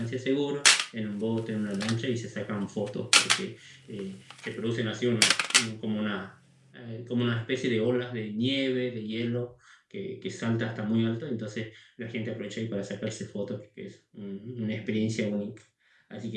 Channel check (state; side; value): identical; both; correlation 1.00